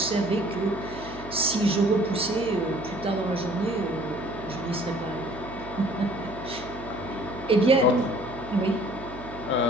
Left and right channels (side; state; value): right; noise; hum, 14 dB below the sound